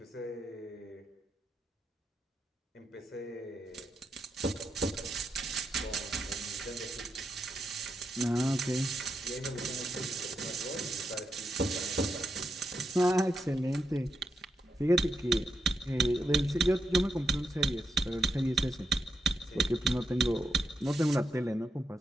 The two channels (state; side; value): normal; both; correlation 0.84